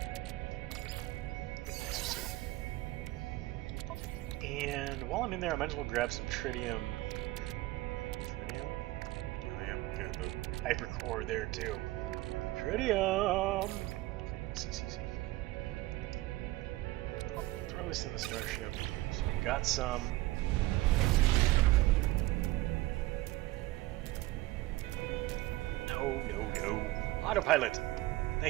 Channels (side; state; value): left; quieter; 18.4 dB